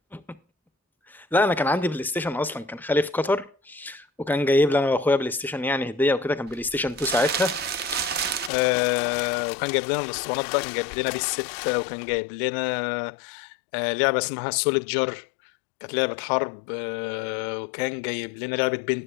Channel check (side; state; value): right; drops out; at 8.5 s